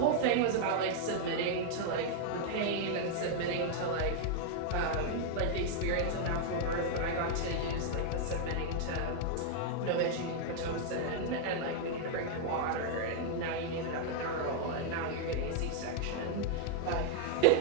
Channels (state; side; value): different; both; correlation 0.00